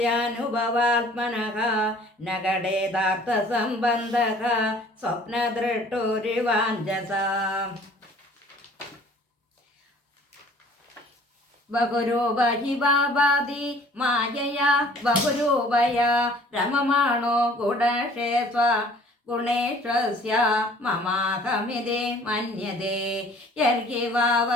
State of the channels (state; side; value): normal; both; correlation 0.52